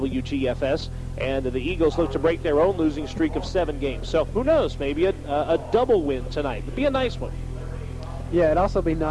And the Eagles look to break their own losing streak of 7 games. So who knows, maybe a double win tonight. It'd be a nice one. Yeah, it'd also be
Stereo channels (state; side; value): identical; both; correlation 1.00